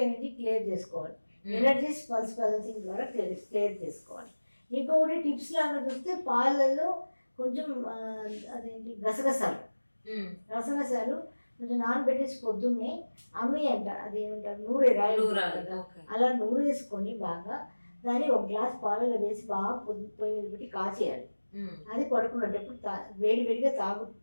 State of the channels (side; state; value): both; inverted; correlation -1.00